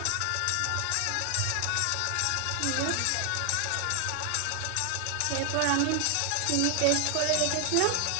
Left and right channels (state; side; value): different; both; correlation 0.00